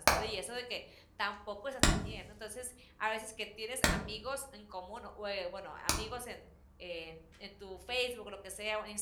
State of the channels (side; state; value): both; identical; correlation 1.00